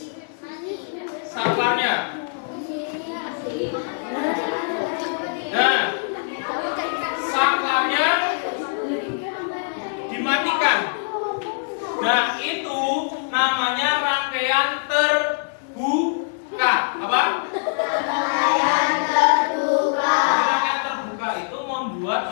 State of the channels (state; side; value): silent; right; digital silence